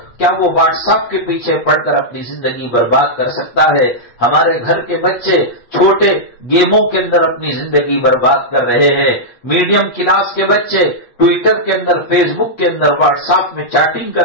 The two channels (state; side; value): late; right; 8.3 ms